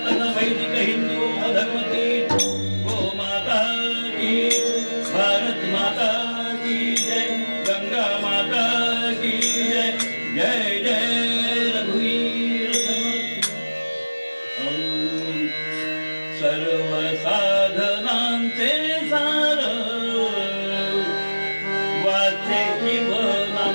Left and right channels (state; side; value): inverted; both; correlation -1.00